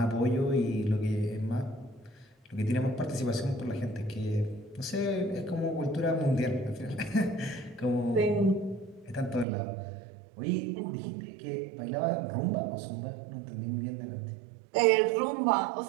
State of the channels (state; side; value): drops out; left; at 9.5 s